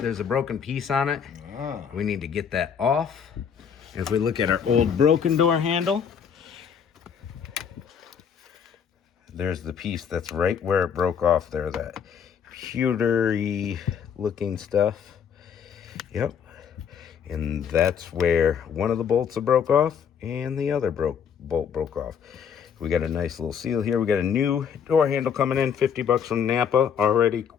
a broken piece on it. We need to get that off. If we look at our old broken door handle, there's the piece that's right where it broke off there, that pewtery looking stuff. Yep. And that's where one of the bolts broke off and the other bolt broke off. We got a nice little seal here. We got a new door handle coming in, 50 bucks from Napa, already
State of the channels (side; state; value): right; quieter; 7.5 dB